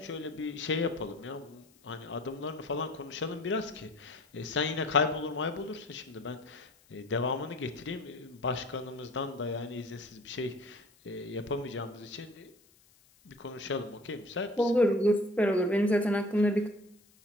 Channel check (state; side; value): noise; left; hiss, 30 dB below the sound